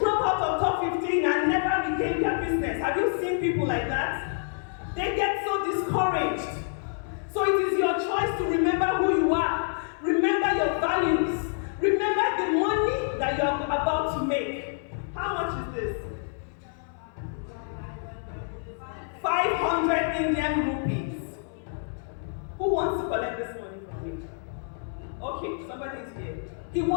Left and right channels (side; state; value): right; silent; 60 dB below the other